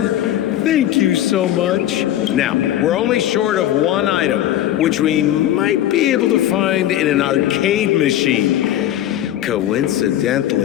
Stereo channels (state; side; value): quieter; right; 12.4 dB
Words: Thank you so much. Now, we're only short of 1 item, which we might be able to find in an arcade machine.